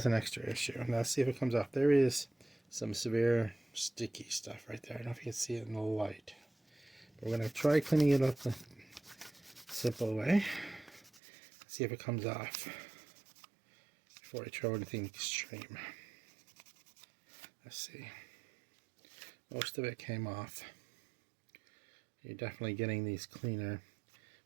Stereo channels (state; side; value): drops out; left; at 11.2 s